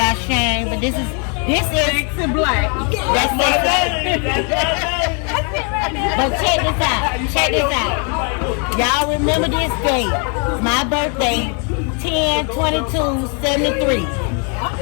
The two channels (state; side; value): quieter; right; 37.7 dB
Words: Shane, but this is Sexy black. that's it. But check this out. Y'all remember this date? My birthday, 10/22/73.